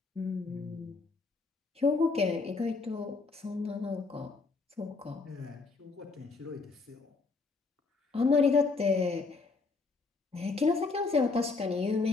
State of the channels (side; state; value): right; quieter; 4.1 dB